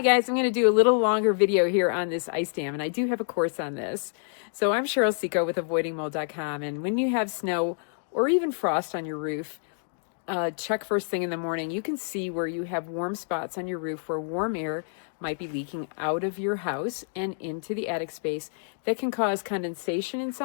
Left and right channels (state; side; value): silent; right; digital silence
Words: guys, I'm going to do a little longer video here on this ice dam, and I do have a course on this. So I'm Cheryl Seco with avoidingmold.com, and when you have snow or even frost on your roof, check first thing in the morning. You can see where you have warm spots on your roof where warm air might be leaking out of your house and into the attic space. That can cause condensation in